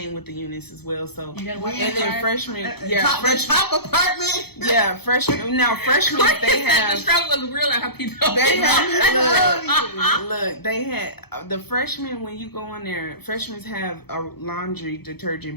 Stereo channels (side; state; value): right; late; 0.97 ms